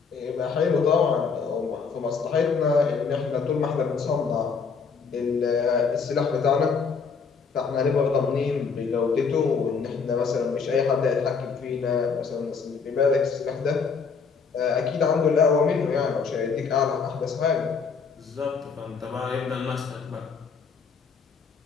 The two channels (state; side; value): quieter; right; 5.5 dB